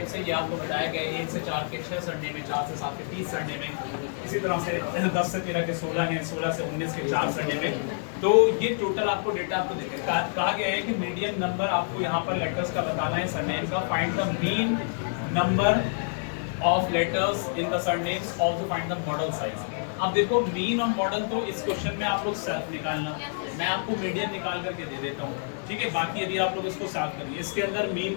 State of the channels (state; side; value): silent; right; 60 dB below the other